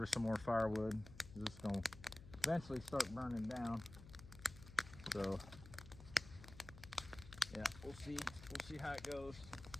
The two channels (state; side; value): noise; left; hum, 16 dB below the sound